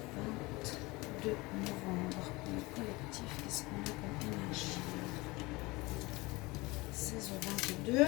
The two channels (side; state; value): right; quieter; 22.9 dB